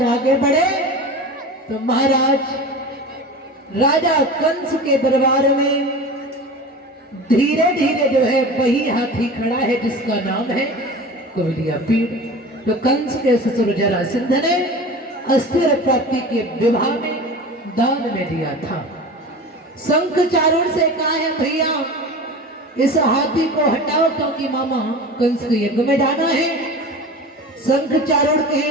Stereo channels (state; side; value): normal; both; correlation 0.34